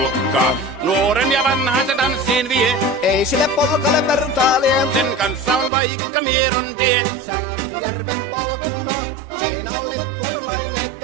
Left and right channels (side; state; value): left; drops out; at 5.7 s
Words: Nuoren ja vanhan se tanssiin vie. Ei sille polkalle vertailie. Sen kanssa on vaikka Mieron tie. Säkkijärven polkka. Siinä on